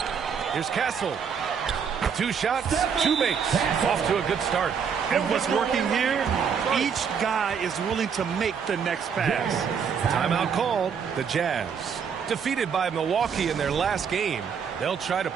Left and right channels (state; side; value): quieter; left; 6.8 dB